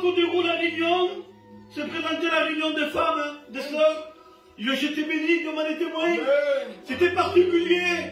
déroule la réunion, se présentait la réunion des femmes, des sœurs. J'étais béni, Dieu m'en est témoin. C'était particulier.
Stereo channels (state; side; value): identical; both; correlation 1.00